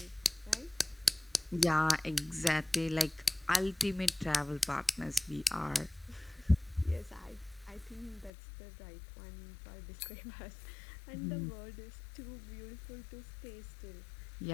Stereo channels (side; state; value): right; drops out; at 8.3 s